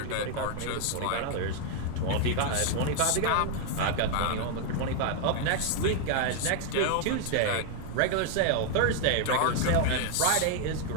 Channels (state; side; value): different; both; correlation 0.00